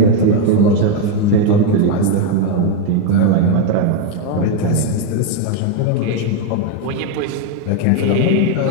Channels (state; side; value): different; both; correlation 0.01